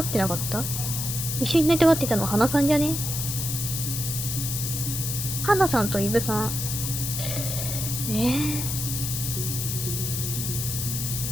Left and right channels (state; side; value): noise; left; hiss, 3 dB below the sound